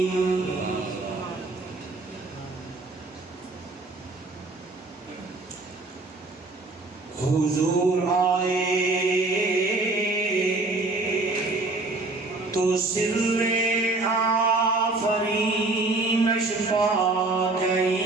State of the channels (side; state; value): left; quieter; 3.2 dB